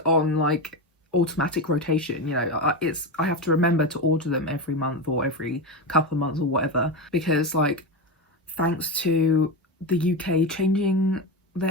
on like automatic rotation. You know, I have to remember to order them every month or every couple of months or whatever, because like thanks to the UK changing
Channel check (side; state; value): both; normal; correlation 0.17